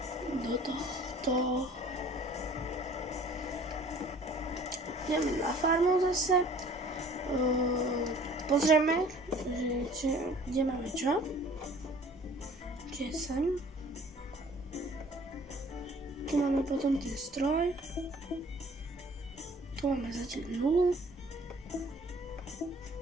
do tohto. Ideme na farmu zase. Pozrieme, kde máme čo. Čiže sem. Tu máme potom ten stroj. Tu máme zatiaľ 0.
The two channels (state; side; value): normal; both; correlation 0.51